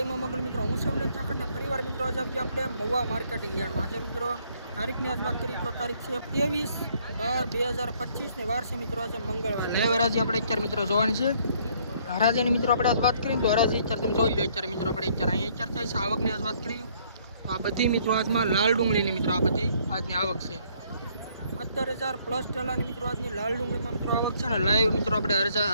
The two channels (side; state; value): both; inverted; correlation -0.65